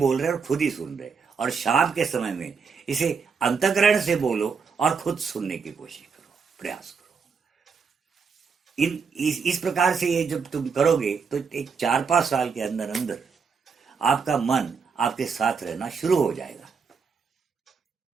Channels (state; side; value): quieter; left; 5.6 dB